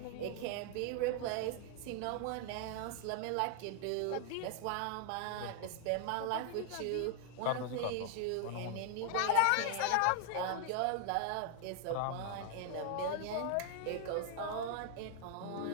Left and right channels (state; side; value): different; both; correlation 0.00